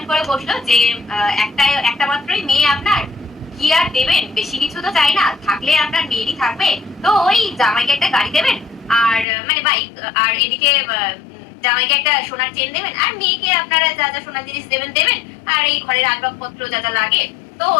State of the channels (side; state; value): right; drops out; at 9.2 s